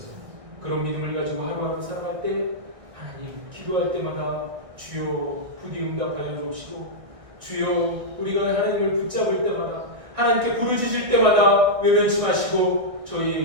그런 믿음을 가지고 하루하루 살아갈 때 하나님 기도할 때마다 주여 부디 응답하여 주옵시고 주여 우리가 하나님을 붙잡을 때마다 하나님께 부르짖을 때마다 외면치 마시고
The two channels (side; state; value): left; late; 1.6 ms